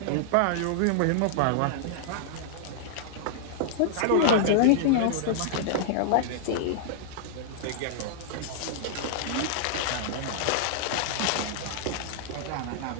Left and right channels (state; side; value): different; both; correlation -0.01